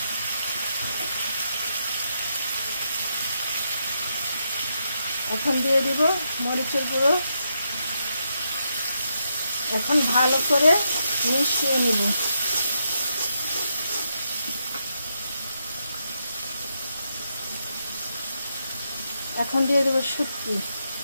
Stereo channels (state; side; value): inverted; both; correlation -0.81